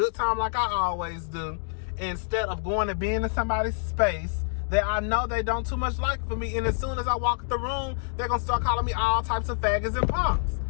time like I always do, instead of going and being in somebody's space that I know they don't too much like for me. And as soon as I walk the room, they're going to start calling me all types of faggots and punks.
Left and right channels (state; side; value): silent; right; digital silence